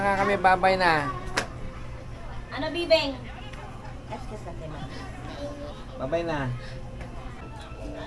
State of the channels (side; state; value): both; identical; correlation 1.00